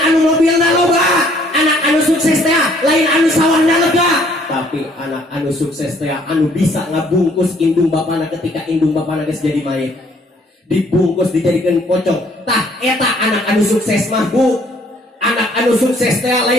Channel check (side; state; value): both; normal; correlation 0.62